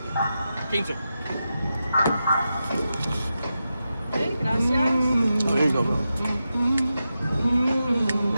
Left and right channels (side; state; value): both; inverted; correlation -0.90